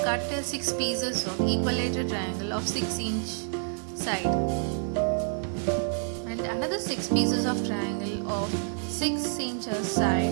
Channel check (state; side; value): silent; left; digital silence